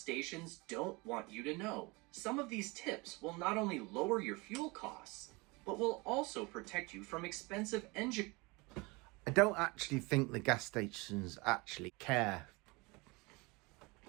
don't want you to know. Some of these tips will not only lower your fuel costs, but will also protect you from expensive engine. I don't actually think the gas stations actually care.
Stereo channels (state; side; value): quieter; left; 25.6 dB